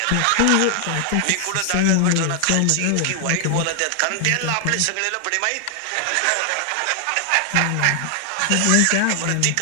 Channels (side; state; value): both; different; correlation 0.00